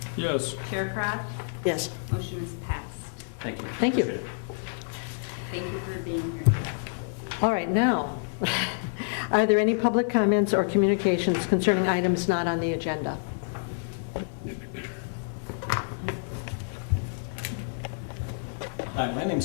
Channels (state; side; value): silent; right; digital silence